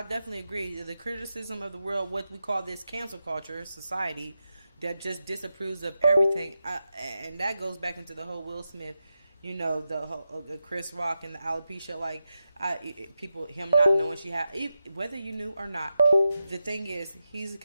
definitely agree. The criticism of the world, what we call this cancel culture society, that just disapproves of everything, and that goes back into the whole Will Smith. You know, the whole Chris Rock and the alopecia, like him not knowing she had, whether you knew or not. The thing is, he's a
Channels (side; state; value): both; inverted; correlation -0.89